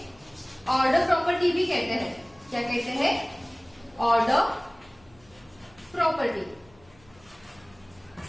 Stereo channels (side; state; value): left; noise; hum, 29 dB below the sound